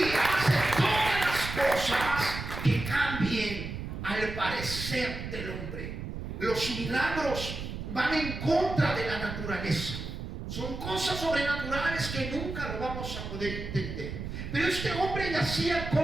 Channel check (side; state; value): right; noise; rumble, 7 dB below the sound